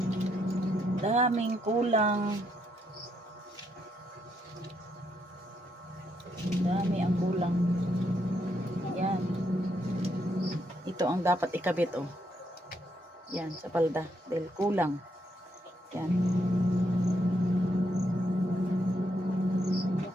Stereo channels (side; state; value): both; normal; correlation 0.77